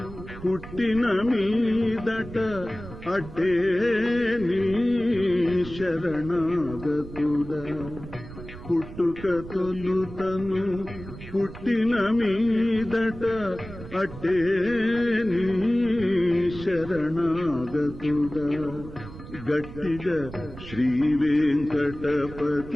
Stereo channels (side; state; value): right; noise; rumble, 14 dB below the sound